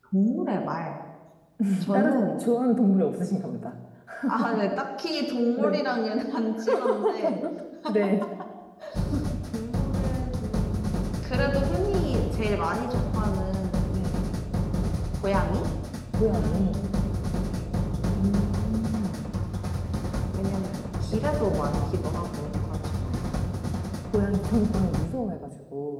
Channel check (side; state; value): both; identical; correlation 1.00